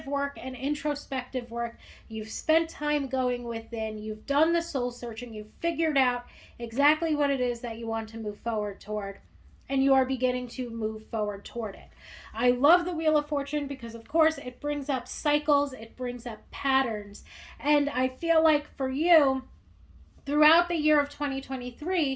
work and introspective work. You've spent time going within. You've done the soul searching. You've figured out exactly what it is that you want to move forward toward. And you are beginning to move forward toward it. I love the Wheel of Fortune because, of course, it brings up cycles, it brings up patterns. And I feel like for you, throughout the year of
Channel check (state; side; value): identical; both; correlation 1.00